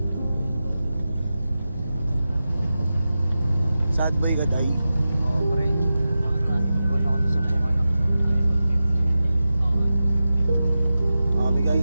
Sad boy ka day. Oo pre. Iwan ako sa pong anak. Okay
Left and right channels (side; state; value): both; inverted; correlation -0.93